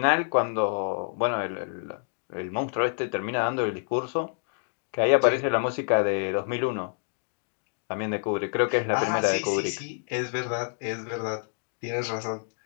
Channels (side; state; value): right; silent; digital silence